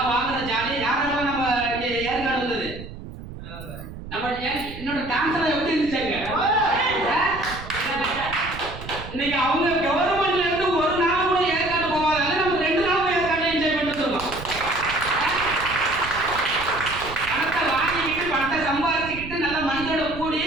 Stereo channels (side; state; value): right; noise; rumble, 12 dB below the sound